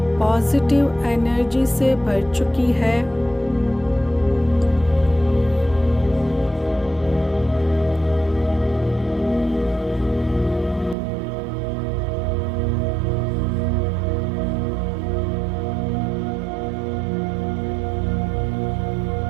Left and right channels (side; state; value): left; drops out; at 11.0 s